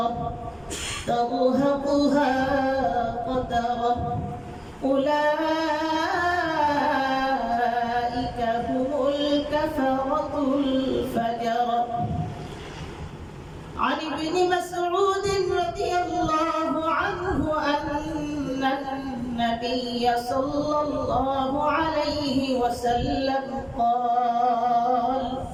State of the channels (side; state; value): both; identical; correlation 1.00